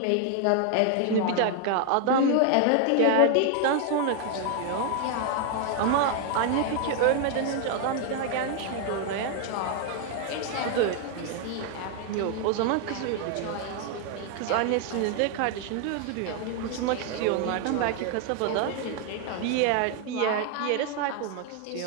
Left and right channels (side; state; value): both; different; correlation 0.00